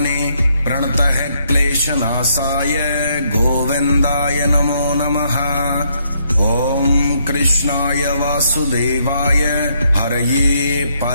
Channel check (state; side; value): inverted; both; correlation -0.73